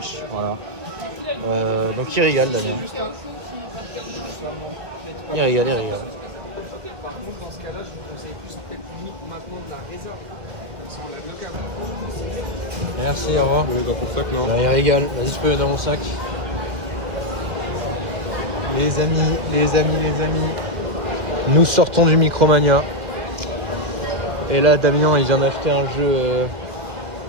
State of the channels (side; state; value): left; late; 2.2 ms